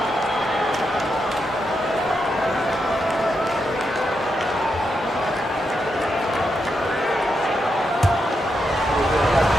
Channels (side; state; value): both; normal; correlation 0.84